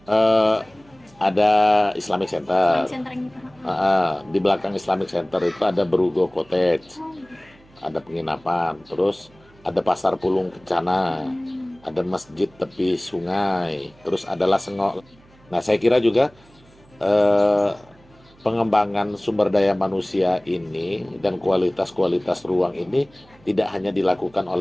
Eh, ada Islamic Center. Center yang kita. Di belakang Islamic Center itu ada Berugo Cottage, ada penginapan, terus ada Pasar Pulung Kencana, ada masjid tepi sungai, terus ada Lasengok. Nah, saya kira juga pengembangan sumber daya manusia ini dan kualitas-kualitas ruang ini tidak hanya dilakukan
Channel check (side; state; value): right; noise; hum, 28 dB below the sound